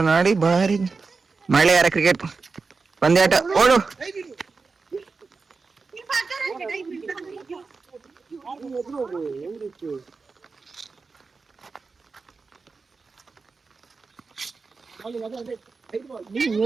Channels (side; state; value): left; quieter; 4.4 dB